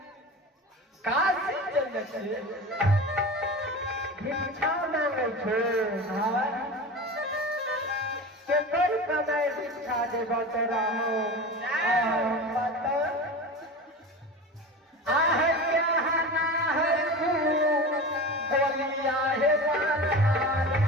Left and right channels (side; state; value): both; normal; correlation 0.30